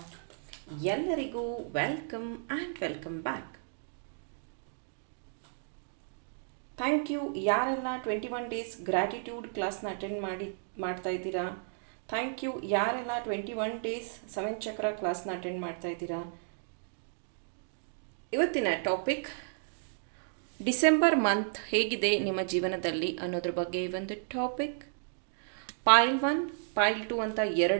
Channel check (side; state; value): left; silent; digital silence